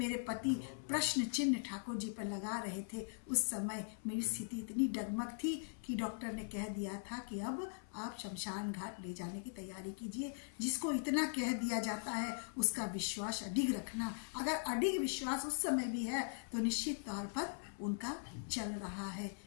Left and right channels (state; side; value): silent; right; 51 dB below the other